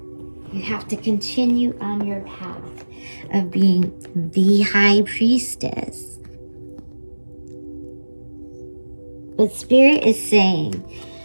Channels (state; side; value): inverted; both; correlation -1.00